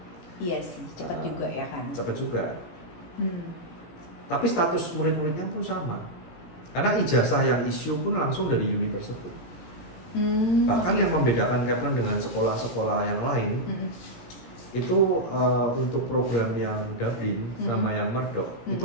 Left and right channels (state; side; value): late; right; 17 ms